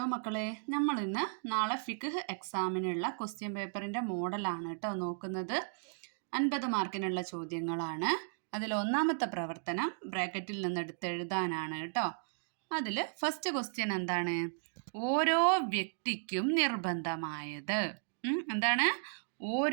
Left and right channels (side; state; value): left; silent; digital silence